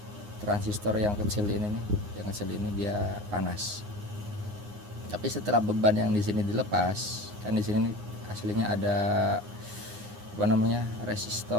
transistor yang kecil ini nih, yang kecil ini dia panas. Tapi setelah beban yang di sini dilepas, kan di sini aslinya ada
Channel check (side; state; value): left; late; 9.7 ms